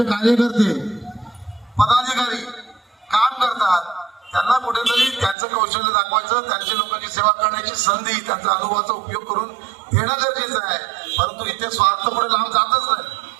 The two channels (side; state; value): left; drops out; at 5.4 s